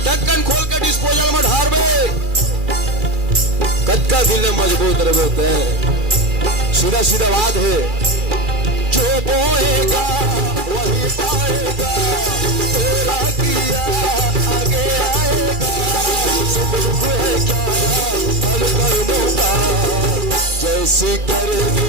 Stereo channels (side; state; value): left; late; 2.4 ms